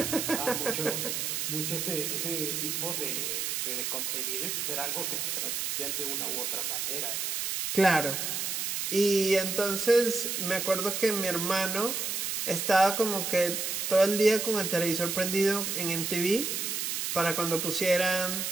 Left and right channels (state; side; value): noise; right; hiss, 1 dB below the sound